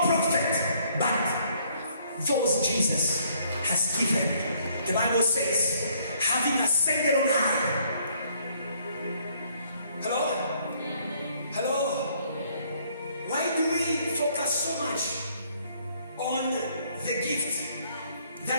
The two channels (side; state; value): both; inverted; correlation -0.65